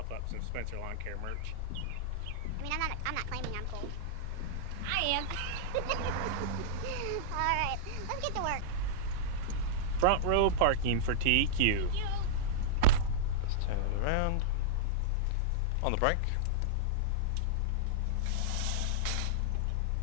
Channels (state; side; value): different; both; correlation -0.02